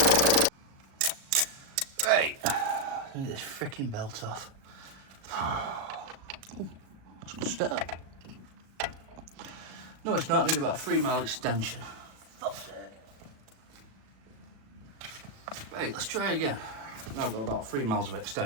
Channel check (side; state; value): left; late; 36 ms